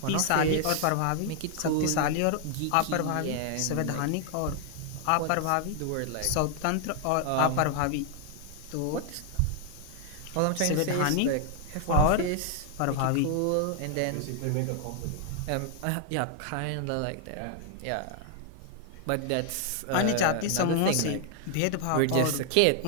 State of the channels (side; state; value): both; different; correlation 0.00